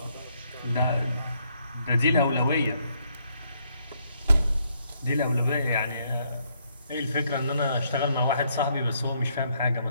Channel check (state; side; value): inverted; both; correlation -0.72